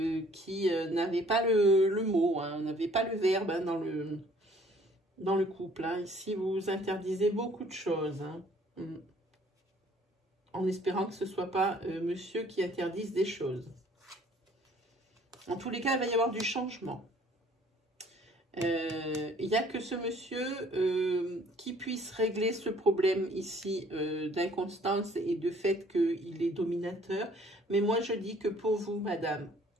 n'avez pas le mot, hein, n'avez pas le verbe hein, dans le couple. Hein. Ici, vous interdisez beaucoup de choses. Hein. En espérant que ce ne soit pas monsieur qui interdise des choses. En tous les cas, il va y avoir du changement. Il n'y a que ce monsieur qui puisse régler ce problème ici d'inconstance et de fait qu'il est dominateur. Mais moi, je dis que pour vous, madame,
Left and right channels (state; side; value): normal; both; correlation 0.57